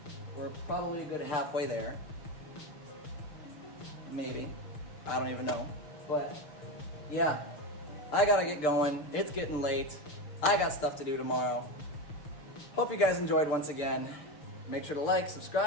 We're probably a good halfway there. Maybe. I don't even know. But, yeah. I gotta get going. It's getting late. I got stuff to do tomorrow. Hope you guys enjoyed once again. Make sure to like,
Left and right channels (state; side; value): late; right; 6.7 ms